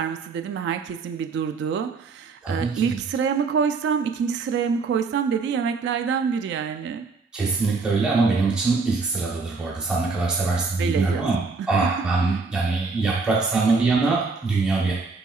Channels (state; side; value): quieter; left; 4.4 dB